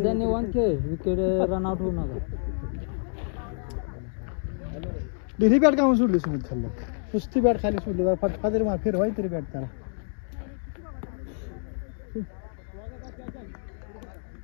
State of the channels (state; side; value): silent; right; digital silence